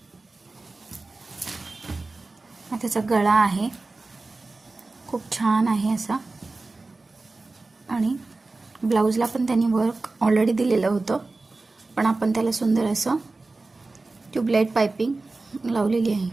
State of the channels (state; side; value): quieter; left; 3.4 dB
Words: त्याचा गळा आहे, खूप छान आहे असा, आणि ब्लाऊजला पण त्यांनी वर्क ऑलरेडी दिलेलं होतं, पण आपण त्याला सुंदर असं ट्यूबलाईट पाइपिंग लावलेली